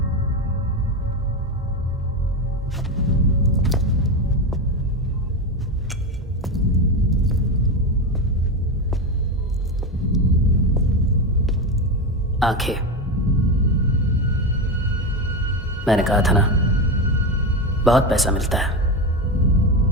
आंखें, मैंने कहा था ना, बहुत पैसा मिलता है।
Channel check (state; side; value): normal; both; correlation 0.16